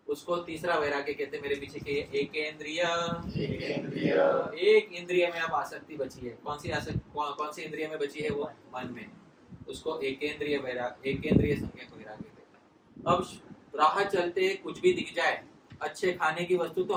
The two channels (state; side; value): identical; both; correlation 1.00